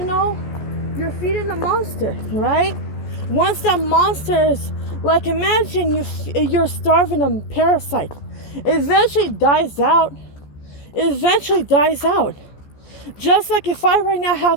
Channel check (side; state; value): right; late; 14 ms